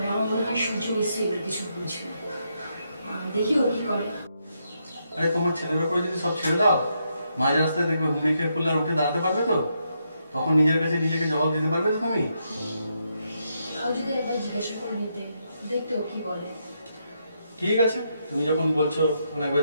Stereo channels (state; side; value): inverted; both; correlation -0.80